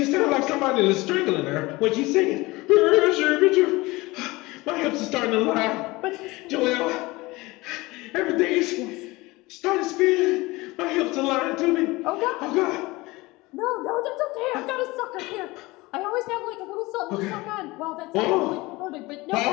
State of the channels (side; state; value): right; quieter; 21.7 dB